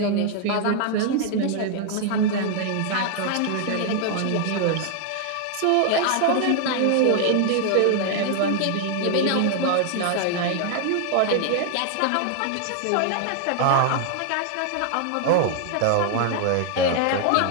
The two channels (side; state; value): both; different; correlation 0.00